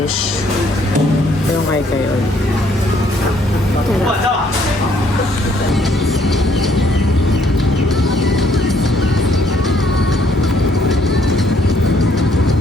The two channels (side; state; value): both; normal; correlation 0.66